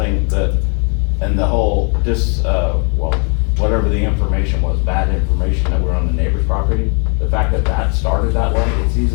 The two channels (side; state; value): right; quieter; 38.6 dB